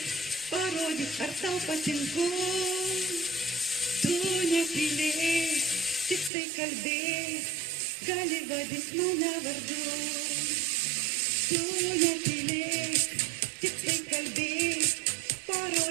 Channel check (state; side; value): drops out; left; at 6.3 s